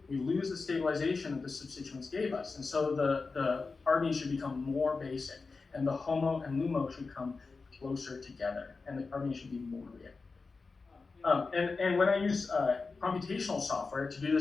we lose the stabilization that the substituents gave us. And so the carbene should become more basic, and the HOMO and LUMO should come closer together, and the carbene should be more reactive. And when I use computational software to do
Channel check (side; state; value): right; quieter; 4.2 dB